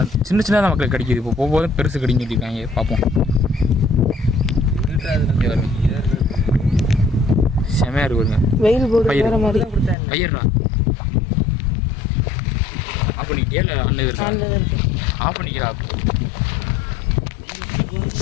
சின்ன சின்னதாக மக்களுக்கு கிடைக்கிது. இப்போ போகும்போது பெருசு கிடைக்கும் சொல்லியிருக்காங்க. பார்ப்போம். செமையாக இருக்குங்க. வெயில் போடுற மாதிரி ஐயர்டா. அப்போ நீ கேள அண்ணன் ஆஃப் பண்ணிக்கிறா.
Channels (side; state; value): right; drops out; at 10.0 s